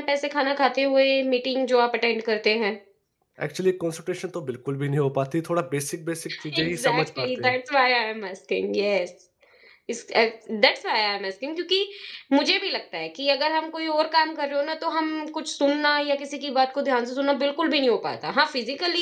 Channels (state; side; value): identical; both; correlation 1.00